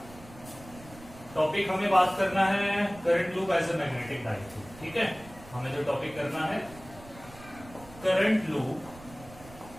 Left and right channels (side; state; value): right; noise; rumble, 19 dB below the sound